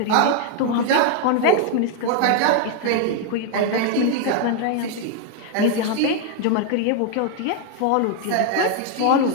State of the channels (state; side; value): different; both; correlation 0.00